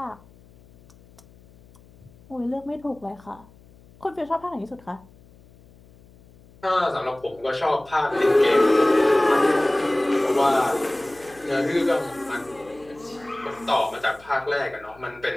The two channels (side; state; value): left; noise; hum, 26 dB below the sound